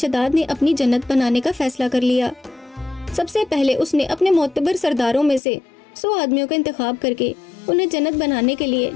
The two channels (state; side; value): drops out; right; at 5.4 s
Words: نے اپنی جنت بنانے کا فیصلہ کر لیا۔ سب سے پہلے اس نے اپنے معتبر سرداروں میں سے 100 آدمیوں کا انتخاب کر کے انہیں جنت بنانے کے لیے